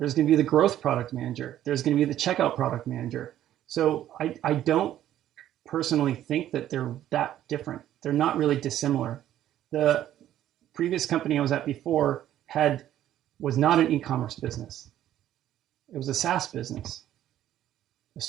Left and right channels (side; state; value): left; quieter; 12.1 dB